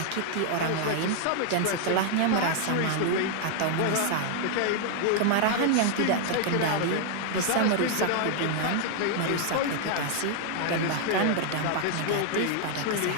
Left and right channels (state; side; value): different; both; correlation 0.00